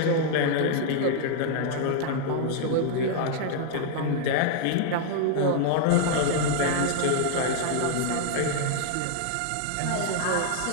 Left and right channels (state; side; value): different; both; correlation -0.01